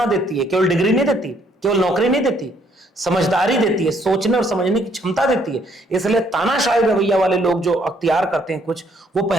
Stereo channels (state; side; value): normal; both; correlation 0.67